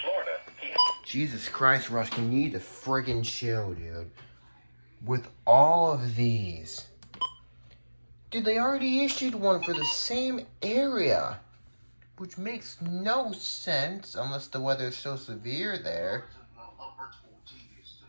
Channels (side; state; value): both; inverted; correlation -1.00